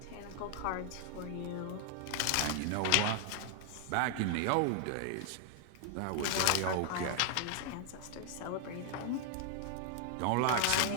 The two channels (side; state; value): both; different; correlation 0.00